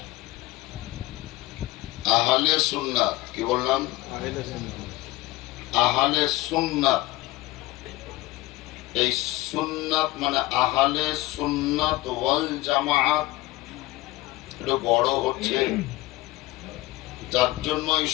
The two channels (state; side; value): quieter; right; 18.8 dB